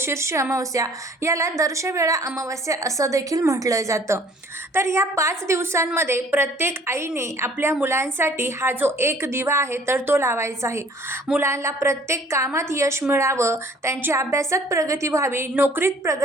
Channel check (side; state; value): both; normal; correlation 0.55